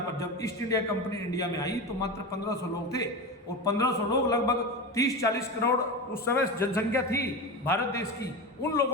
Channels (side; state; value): both; normal; correlation 0.23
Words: पर, जब ईस्ट इंडिया कंपनी इंडिया में आई तो मात्र 1500 लोग थे, और 1500 लोग लगभग 30-40 करोड़ उस समय जनसंख्या थी भारत देश की, उन